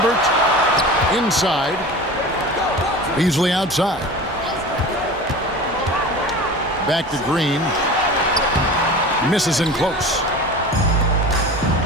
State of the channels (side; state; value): both; normal; correlation 0.35